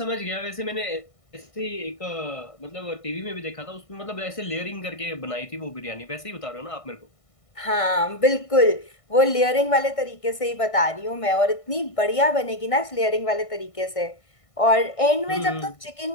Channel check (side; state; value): right; late; 1.5 ms